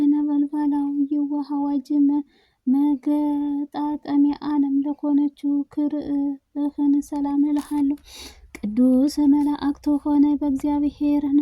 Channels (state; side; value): identical; both; correlation 1.00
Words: የውሃ አዋጅ መገጣጠሚያ ዓለም ለሆነችው ክርህን ሰላም እልሃለሁ። ቅዱስ መላእክት ሆነ